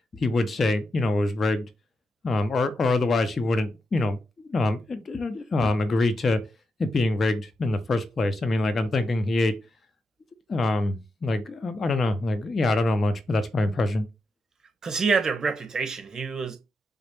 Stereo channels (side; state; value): both; normal; correlation 0.86